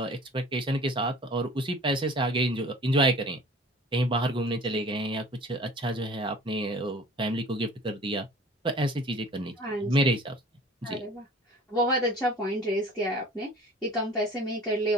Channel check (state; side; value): normal; both; correlation 0.45